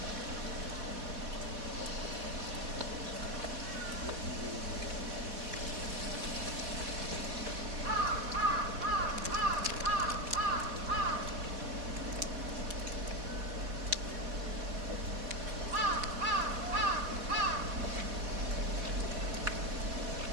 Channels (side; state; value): left; late; 4.1 ms